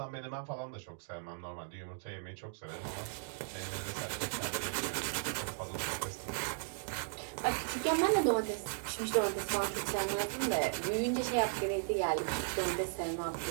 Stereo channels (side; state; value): left; silent; digital silence